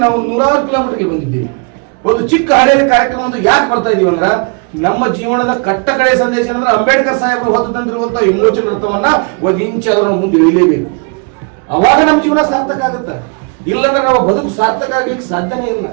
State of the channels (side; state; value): left; quieter; 35.6 dB